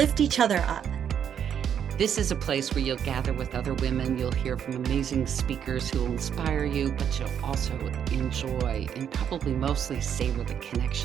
each other up. This is a place where you'll gather with other women, you'll hear from amazing speakers who will inspire you, but you'll also enjoy and probably mostly savor the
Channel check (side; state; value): left; quieter; 8.6 dB